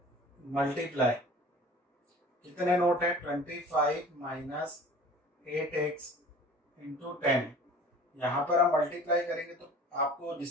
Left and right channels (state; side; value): normal; both; correlation 0.45